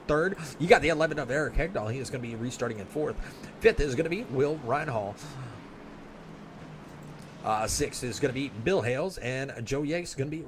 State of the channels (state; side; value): identical; both; correlation 1.00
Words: third. You got the 11 of Eric Hegdahl. He is going to be restarting in fourth. Fifth is going to be Will Reinhall. Sixth is going to be Bill Hales, and Joe Yates is going to be